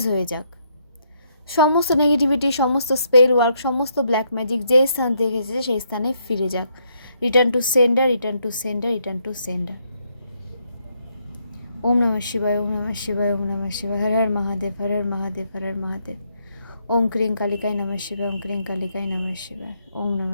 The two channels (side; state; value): both; inverted; correlation -0.74